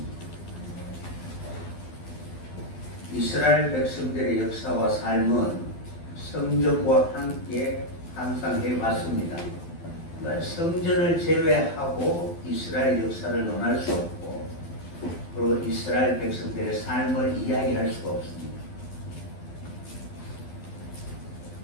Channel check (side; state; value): right; late; 12 ms